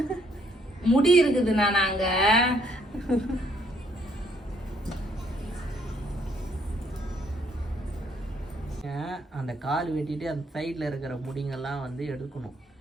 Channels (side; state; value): both; normal; correlation 0.68